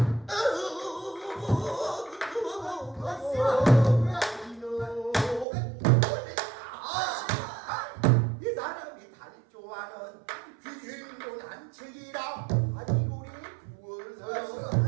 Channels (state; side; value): drops out; left; at 5.5 s